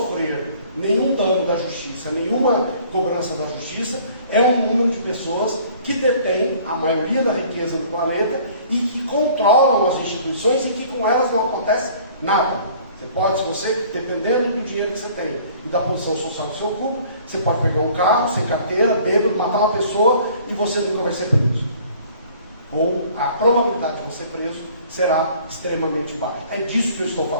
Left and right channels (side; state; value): both; inverted; correlation -0.53